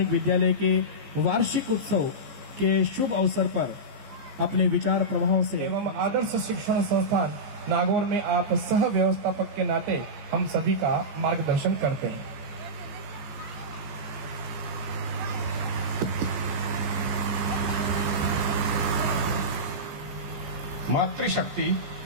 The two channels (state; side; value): late; left; 15 ms